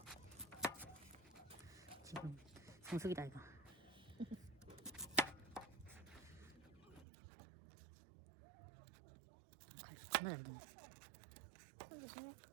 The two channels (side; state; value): left; drops out; at 7.1 s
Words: 지금 성숙이다 이거. 정말 잘 됐네. 손 조심해.